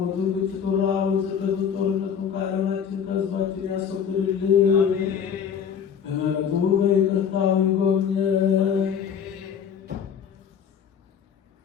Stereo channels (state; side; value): quieter; right; 7.6 dB